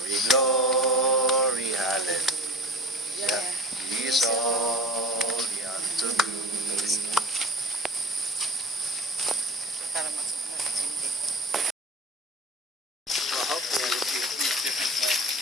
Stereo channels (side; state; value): both; normal; correlation 0.40